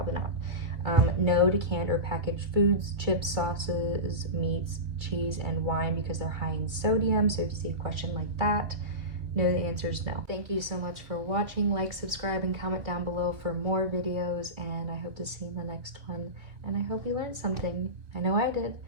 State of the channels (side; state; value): left; late; 2.3 ms